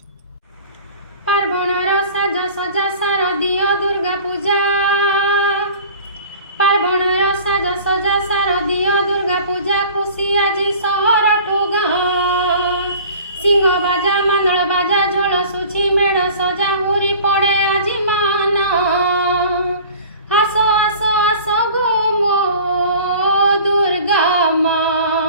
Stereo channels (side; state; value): both; inverted; correlation -0.43